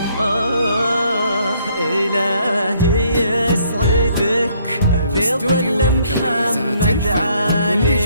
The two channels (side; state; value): both; inverted; correlation -0.66